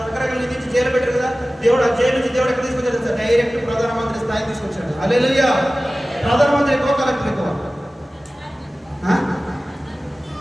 రకరకాల నిధించి జైలు పెట్టారు కదా, దేవుడు ఆ జైలు నుంచి దేవుడు ఎక్కడ తీసుకొచ్చాడు తెలుసా? డైరెక్ట్ ప్రధానమంత్రి స్థాయి తీసుకొచ్చాడు. హల్లెలూయా. ప్రధానమంత్రి ఎక్కువ, కలెక్టర్ ఎక్కువ?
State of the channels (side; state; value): both; normal; correlation 0.97